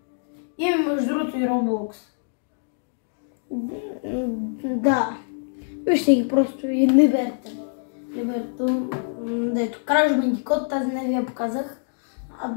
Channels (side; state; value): right; silent; digital silence